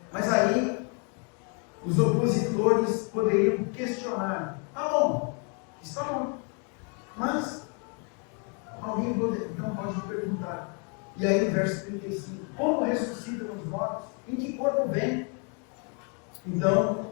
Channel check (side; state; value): right; quieter; 38.1 dB